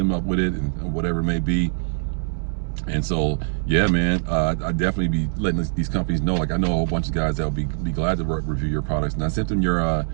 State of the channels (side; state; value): left; silent; digital silence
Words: up with it and whatever it may be. And so, yeah, man, I definitely be letting these companies know. Like, I know a whole bunch of guys that will be glad to review your products, and I sent them your